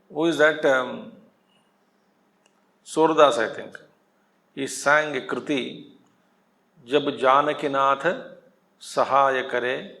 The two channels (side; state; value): both; identical; correlation 1.00